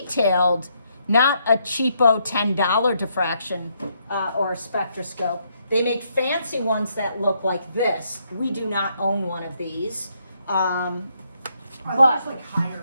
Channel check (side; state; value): both; inverted; correlation -0.75